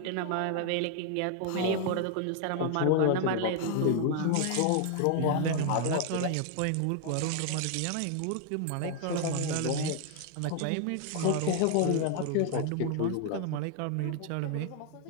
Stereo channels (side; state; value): both; different; correlation 0.00